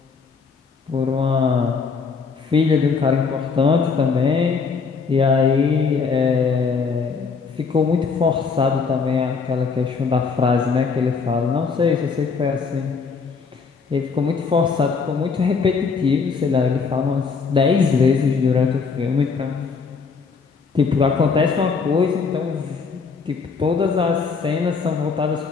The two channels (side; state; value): right; quieter; 5.2 dB